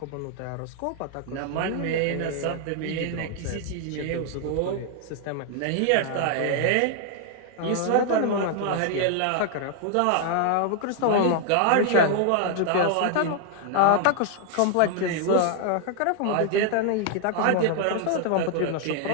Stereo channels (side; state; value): both; different; correlation 0.00